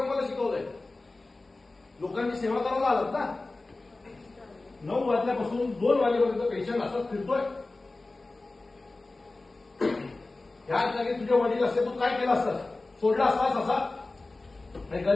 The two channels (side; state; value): right; quieter; 3.2 dB